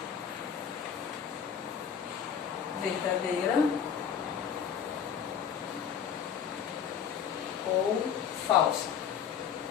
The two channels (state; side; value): quieter; right; 7.9 dB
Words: Verdadeira ou falsa.